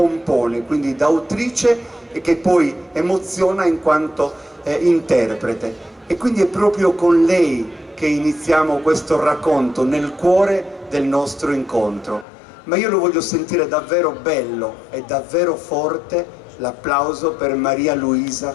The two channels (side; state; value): right; drops out; at 12.2 s